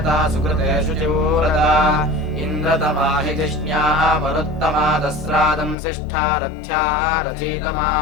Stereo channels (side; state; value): right; drops out; at 5.8 s